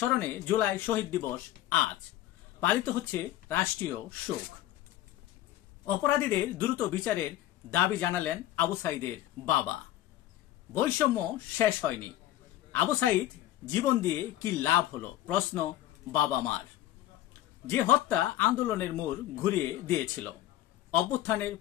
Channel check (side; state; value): right; quieter; 14.2 dB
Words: জুলাই শহীদ দিবস আজ পালিত হচ্ছে রাষ্ট্রীয় শোক। অপরাধীদের দ্রুত বিচারের দাবি জানালেন আবু সাইদের বাবা। বৈষম্য শেষ হয়নি, আবু সাইদ জীবন দিয়ে কি লাভ হলো প্রশ্ন বাবা মার। যে হত্যা আন্দোলনের মোড় ঘুরিয়ে দিয়েছিল, অভ্যুত্থানের